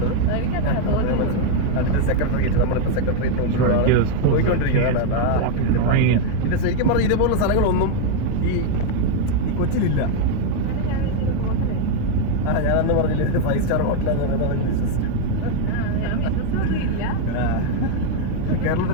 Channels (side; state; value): both; different; correlation 0.00